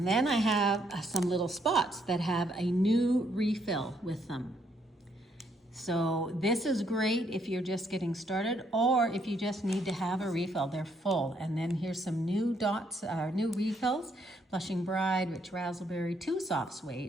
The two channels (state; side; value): normal; both; correlation 0.72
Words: then I have some little spots that have a new refill with them. So this is great if you're just getting started or if you just need to have a refill. They're full. And then here's some new dots, new refills. Blushing Bride, Rich Razzleberry, 2 Soft